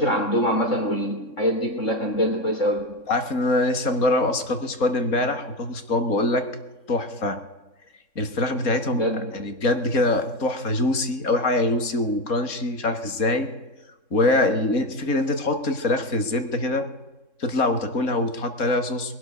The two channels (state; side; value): late; right; 3.7 ms